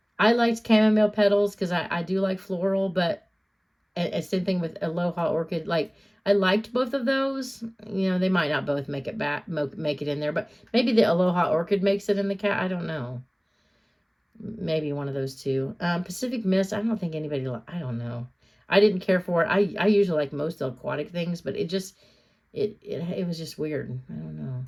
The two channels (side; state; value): both; identical; correlation 1.00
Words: liked chamomile petals because I do like floral, but same thing with Aloha Orchid. Like, I liked both of those. They might not both make it make it in there, but maybe the Aloha Orchid makes it in the cat. I don't know. Maybe one of those two. Pacific Mist, I don't think anybody, I don't know. I didn't care for it. I usually like most aquatic things, but it just, it was just weird. I don't know.